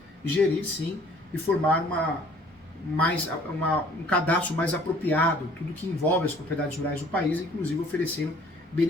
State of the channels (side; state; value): both; normal; correlation 0.55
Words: sim, e formar um cadastro mais apropriado, tudo que envolve as propriedades rurais do país, inclusive oferecendo